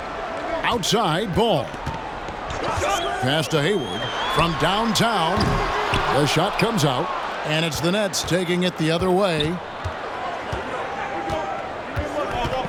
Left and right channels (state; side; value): identical; both; correlation 1.00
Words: Outside, Ball. Pass to Hayward from downtown. The shot comes out, and it's the Nets taking it the other way.